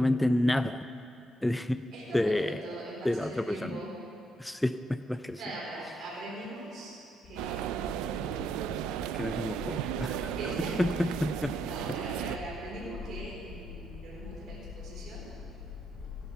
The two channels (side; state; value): both; normal; correlation 0.79